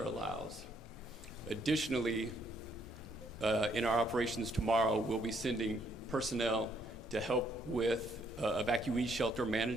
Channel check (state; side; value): normal; both; correlation 0.70